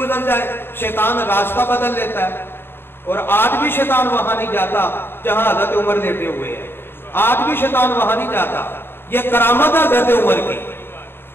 جائے شیطان راستہ بدل لیتا ہے. اور آج بھی شیطان وہاں نہیں جاتا جہاں حضرت عمر لیٹے ہوئے ہیں، آج بھی شیطان وہاں نہیں جاتا. یہ کرامت ہے حضرت عمر کی.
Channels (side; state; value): right; late; 0.11 ms